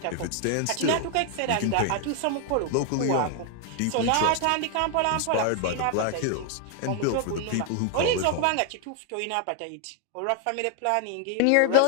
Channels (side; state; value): both; different; correlation 0.00